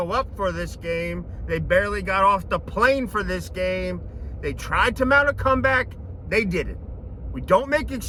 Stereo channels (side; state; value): both; identical; correlation 1.00